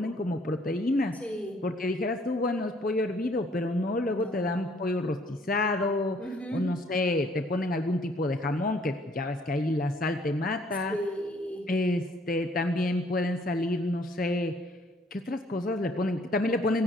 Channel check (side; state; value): both; normal; correlation 0.62